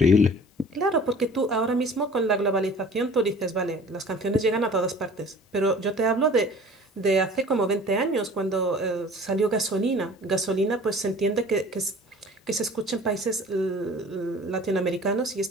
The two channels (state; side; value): normal; both; correlation 0.46